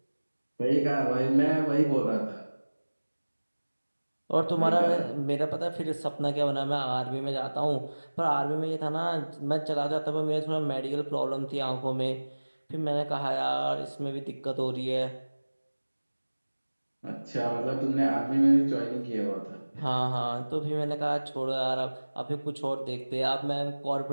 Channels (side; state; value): both; inverted; correlation -1.00